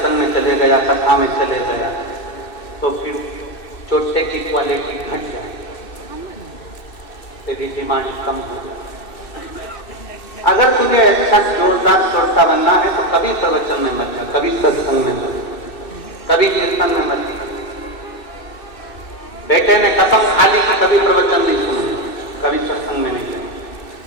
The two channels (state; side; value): late; right; 2.6 ms